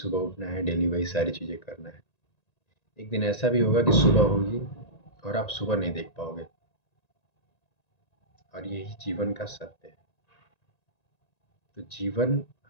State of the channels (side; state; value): right; late; 1.9 ms